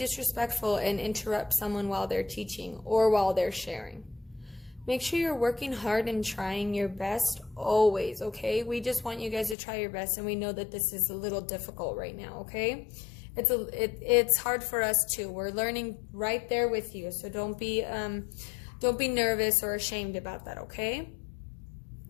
and interrupt someone while they're teaching or while they're sharing. Make sure you're working hard and trying your best always, okay? We just want you guys to try your best, and we know that this is a little difficult right now, okay? It's hard for us too. We're learning right there with you, so don't be nervous or ashamed about that, okay?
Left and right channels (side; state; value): right; drops out; at 9.6 s